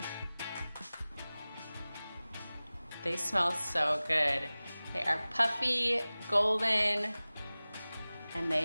They smell so good. They are puffy, golden, and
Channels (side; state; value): both; inverted; correlation -0.98